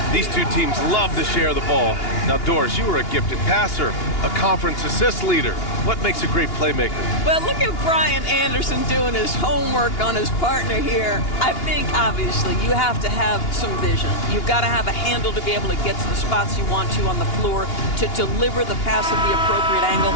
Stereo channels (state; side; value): late; right; 2.8 ms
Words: These two teams love to share the ball. Now, Doris, you were a gifted passer, a conference assist leader. What makes a great playmaker? Well, look at Brian Anderson doing his homework on his partner here. I think, obviously, you have to have some vision. You've got to have a handle to be able to get to the spots you want to on the floor, to deliver the pass at the appropriate angle.